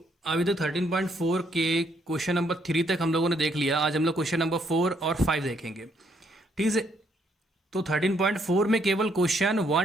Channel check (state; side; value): normal; both; correlation 0.71